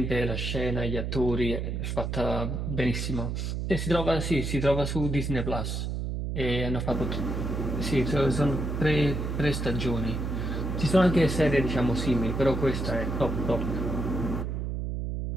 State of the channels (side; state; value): right; noise; hum, 2 dB below the sound